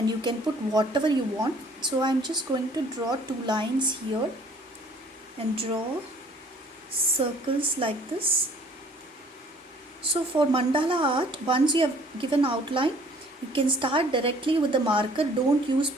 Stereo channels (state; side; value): normal; both; correlation 0.56